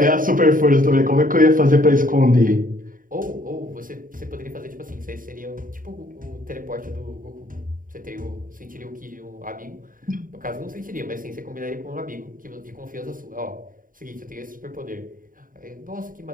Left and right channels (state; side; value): late; left; 0.40 ms